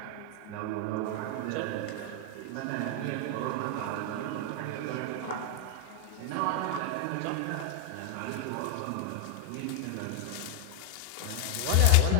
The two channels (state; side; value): different; both; correlation 0.00